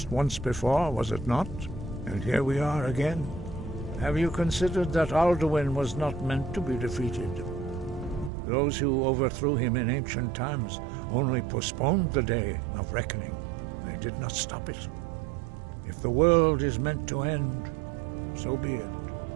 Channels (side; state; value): left; drops out; at 8.3 s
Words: once before, was it not? And here we are again. Have you considered that Alduin was not meant to be defeated? Those who overthrew him in ancient times only postponed the day of reckoning. They did not stop it. If the world is meant to end, so be it.